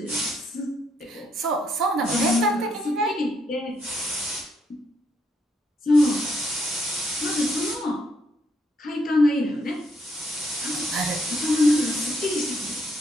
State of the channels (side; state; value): both; normal; correlation 0.74